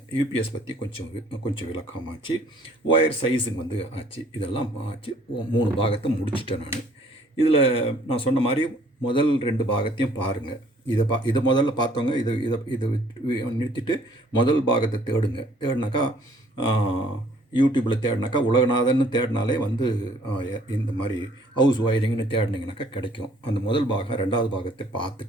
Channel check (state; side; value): normal; both; correlation 0.59